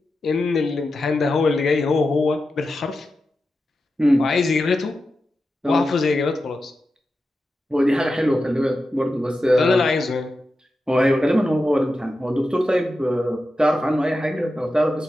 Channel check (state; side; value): normal; both; correlation 0.91